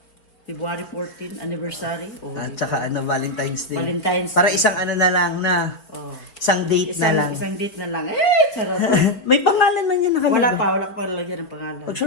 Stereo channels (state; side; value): late; right; 4.1 ms